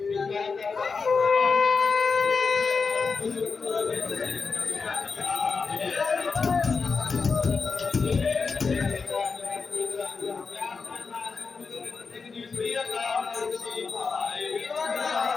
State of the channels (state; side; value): quieter; right; 4.9 dB